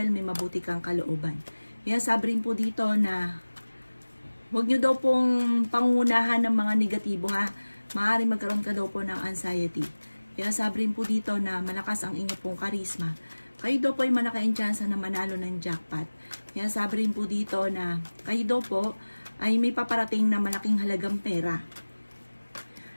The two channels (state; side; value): inverted; both; correlation -1.00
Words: may mabuti kang kalooban. Kaya sabi rin po dito na huwag nyo daw pong pangunahan ng mga negatibo ha. Maaaring magkaroon ka daw po ng anxiety. Kaya sabi rin po dito na malakas ang inyo pong karisma. Kayo daw po ay malaki ang tsansa na manalo ng jackpot. Kaya sabi rin po dito na kayo daw po ay may paparating na malaking halagang pera.